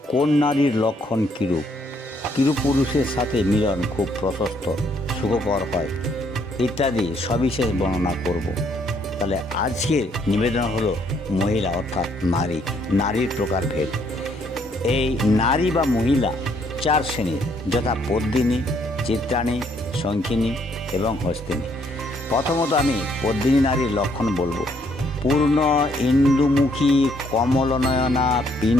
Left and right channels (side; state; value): both; normal; correlation 0.69